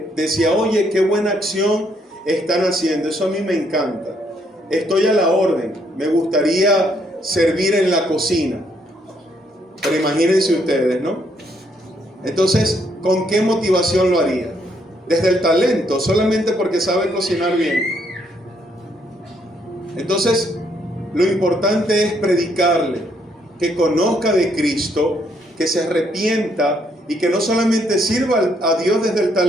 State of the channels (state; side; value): normal; both; correlation 0.71